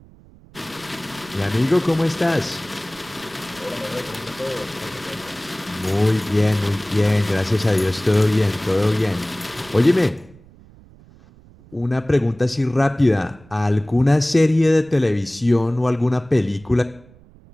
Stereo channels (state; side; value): noise; right; rumble, 25 dB below the sound